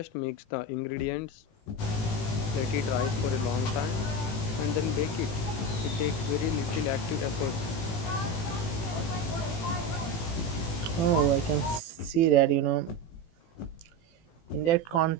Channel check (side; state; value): right; late; 18 ms